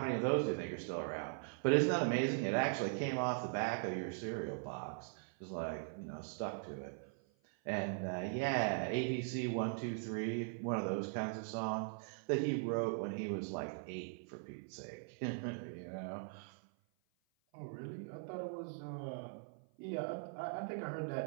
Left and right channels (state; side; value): silent; left; 51 dB below the other